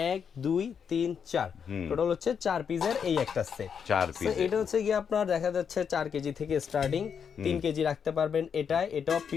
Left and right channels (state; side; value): quieter; right; 7.1 dB